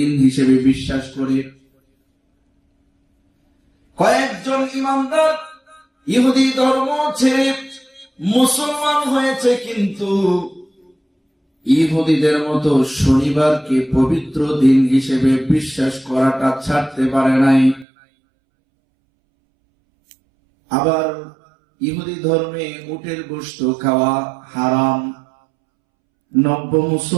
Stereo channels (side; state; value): left; drops out; at 17.9 s